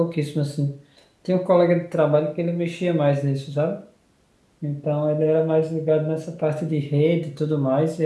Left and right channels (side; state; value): both; identical; correlation 1.00